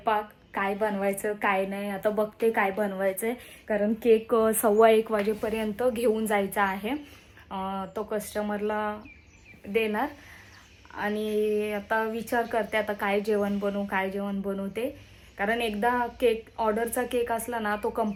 काय बनवायचं काय नाही आता बघते काय बनवायचं आहे. कारण केक 1:15 वाजेपर्यंत घेऊन जायचा आहे. तो कस्टमरला देणार. आणि आता विचार करते आता काय जेवण बनवू ते. कारण एकदा केक ऑर्डरचा केक असला ना तो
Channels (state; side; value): identical; both; correlation 1.00